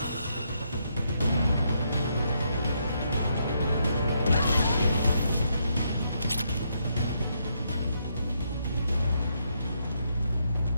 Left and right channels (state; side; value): inverted; both; correlation -0.77